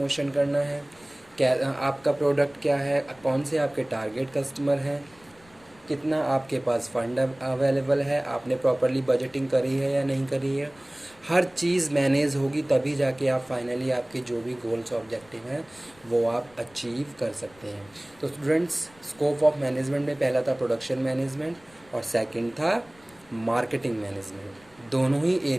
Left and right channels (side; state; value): left; noise; rumble, 28 dB below the sound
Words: करना है, क्या आपका प्रोडक्ट क्या है, कौन से आपके टारगेट कस्टमर हैं, कितना आपके पास फंड अवेलेबल है, आपने प्रॉपरली बजटिंग करी है या नहीं करी है। हर चीज़ मैनेज होगी तभी जाके आप फाइनली आपके जो भी गोल्स ऑब्जेक्टिव हैं वो आप अचीव कर सकते हैं। तो स्टूडेंट्स स्कोप ऑफ मैनेजमेंट में पहला था प्रोडक्शन मैनेजमेंट और सेकंड था मार्केटिंग मैनेजमेंट। दोनों ही